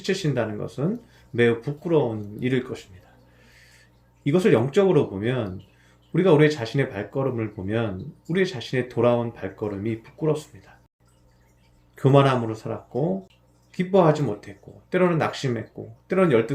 것은 매우 부끄러운 일일 것입니다. 이것을 영적으로 보면 우리가 우리 자신의 발걸음을 보면 우리 자신의 돌아온 발걸음이 부끄럽습니다. 교만함으로 살았고 기뻐하지 못했고 때로는 낙심했고 때로는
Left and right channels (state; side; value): identical; both; correlation 1.00